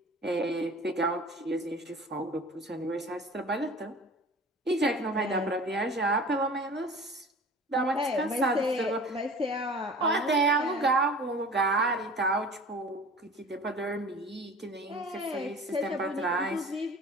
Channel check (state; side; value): normal; both; correlation 0.42